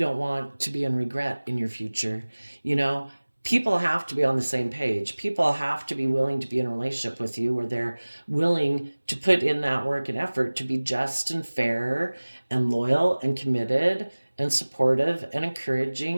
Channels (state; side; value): inverted; both; correlation -1.00